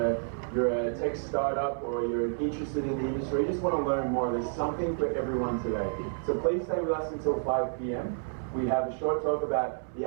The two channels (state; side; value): silent; left; 56 dB below the other